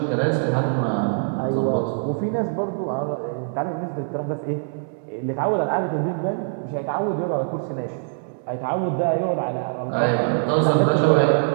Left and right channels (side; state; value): left; silent; 63 dB below the other